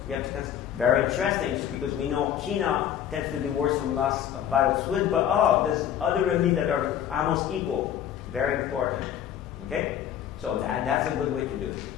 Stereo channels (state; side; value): quieter; right; 10.0 dB